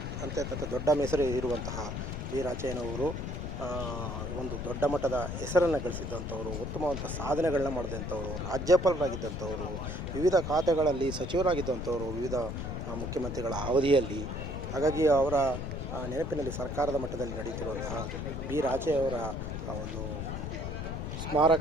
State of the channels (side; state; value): left; noise; rumble, 5 dB below the sound